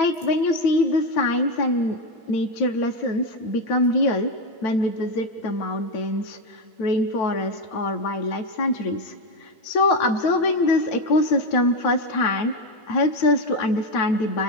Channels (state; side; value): late; right; 9.1 ms